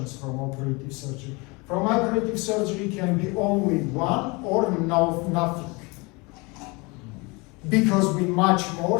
from operative surgery. From operative surgery can be only 1 or nothing. Because we much more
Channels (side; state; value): right; quieter; 27.0 dB